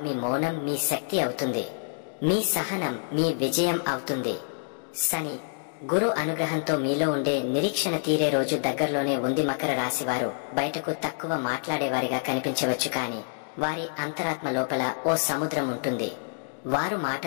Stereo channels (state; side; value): silent; right; digital silence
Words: మీ మౌనం మీ శక్తి అవుతుంది. మీ సహనం మీ విజయం అవుతుంది. శని, గురు అనుగ్రహంతో మీలో ఉండే నిరీక్షణ తీరే రోజు దగ్గరలోనే ఉంది. మకర రాశి వారు బయటకు తక్కువ మాట్లాడేవారిగా కనిపించవచ్చు, కానీ వారి అంతరాత్మ లోపల ఓ సముద్రం ఉంటుంది. వారు